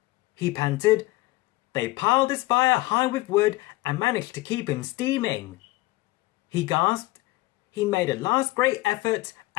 He panted. They piled his fire high with wood and managed to keep him steaming. He gasped. He made a last great effort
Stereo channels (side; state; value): right; quieter; 19.5 dB